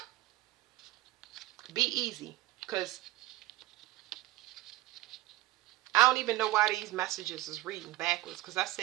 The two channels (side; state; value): left; quieter; 16.8 dB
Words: be easy, because I don't even know why these messages is reading backwards. Because I